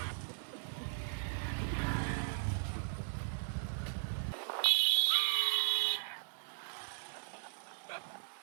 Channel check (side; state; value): left; silent; digital silence